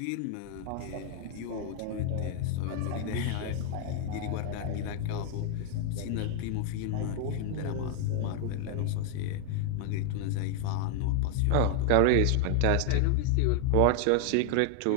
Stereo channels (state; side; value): different; both; correlation 0.00